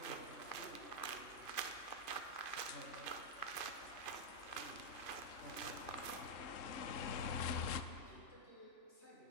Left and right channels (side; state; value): right; late; 2.5 ms